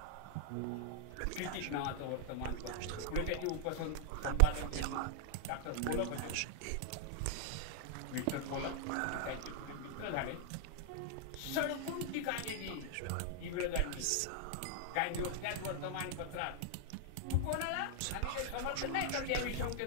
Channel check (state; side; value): different; both; correlation 0.00